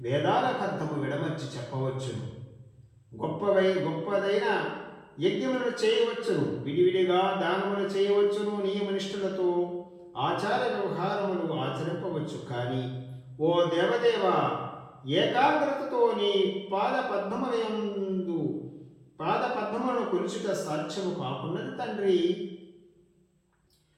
వేదాల అర్థము విడమర్చి చెప్పవచ్చు, గొప్పదైన యజ్ఞములను చేయవచ్చును, విడివిడిగా దానములు చేయవచ్చును, నియమనిష్ఠులతో ఆచార వ్యవహారములు ఆచరింపవచ్చు. కానీ ఓ దేవదేవ, ఏకాగ్రతతో నీ పాదపద్మములను కొలుచుట సాధ్యము కాకున్నది తండ్రి.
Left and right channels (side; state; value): both; identical; correlation 1.00